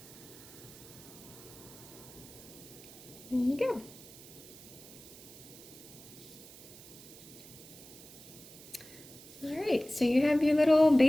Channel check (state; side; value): noise; right; hiss, 18 dB below the sound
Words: There you go. All right, so you have your little